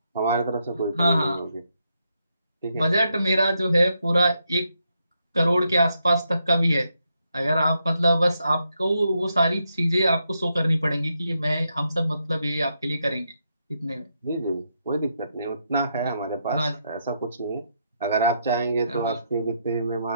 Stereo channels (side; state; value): both; inverted; correlation -0.80